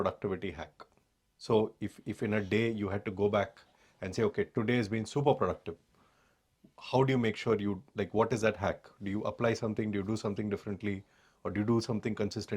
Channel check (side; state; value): both; identical; correlation 1.00